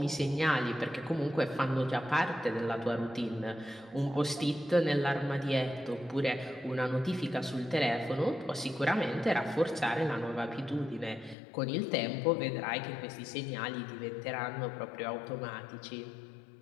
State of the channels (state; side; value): drops out; right; at 11.4 s